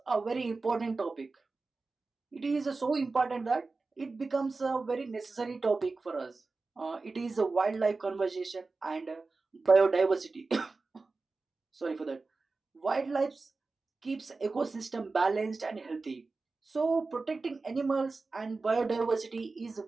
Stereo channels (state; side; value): quieter; left; 3.8 dB